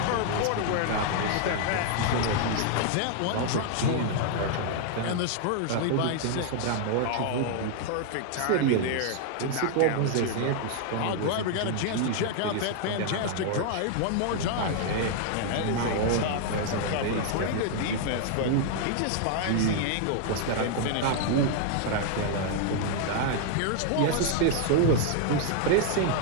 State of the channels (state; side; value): different; both; correlation 0.00